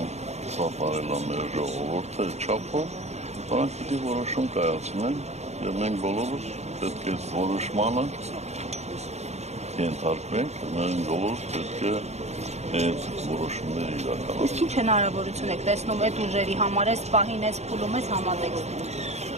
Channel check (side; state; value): left; late; 0.32 ms